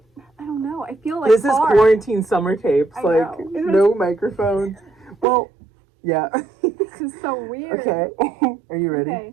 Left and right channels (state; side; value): drops out; left; at 5.2 s